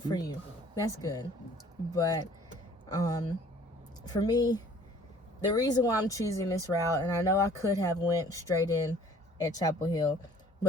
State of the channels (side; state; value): both; normal; correlation 0.53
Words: for you. That's good. But for me, the reason why I'm choosing this route, and I know I could have went straight in at Chapel Hill,